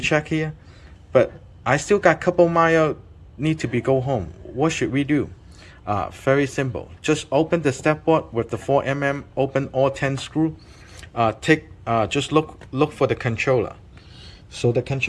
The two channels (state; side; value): identical; both; correlation 1.00